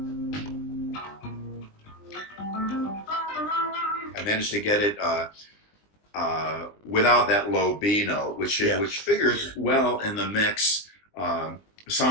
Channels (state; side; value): late; right; 20 ms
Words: I managed to get it without that low B note, which figures well in the mix